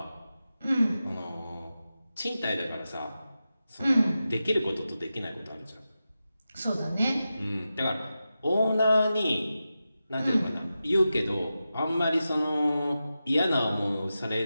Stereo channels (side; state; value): both; inverted; correlation -0.92